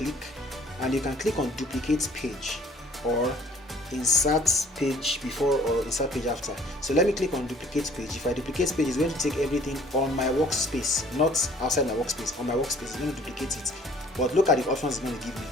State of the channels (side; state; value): both; normal; correlation 0.56